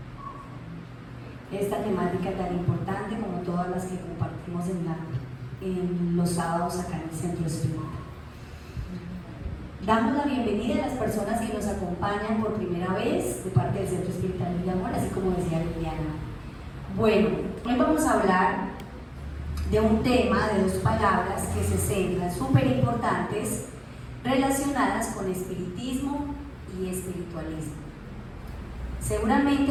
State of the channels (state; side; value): identical; both; correlation 1.00